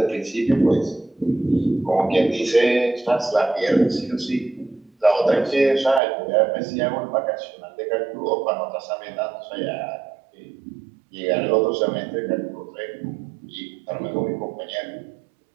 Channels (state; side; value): drops out; left; at 6.0 s